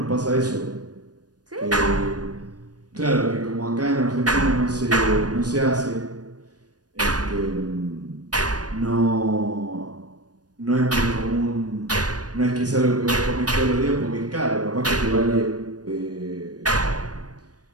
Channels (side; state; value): left; late; 0.69 ms